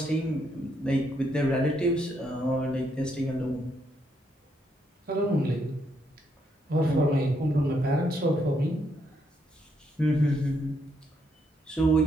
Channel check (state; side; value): normal; both; correlation 0.75